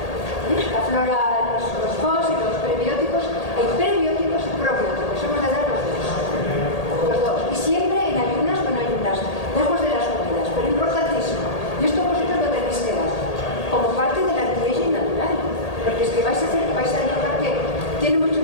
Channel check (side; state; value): right; late; 1.8 ms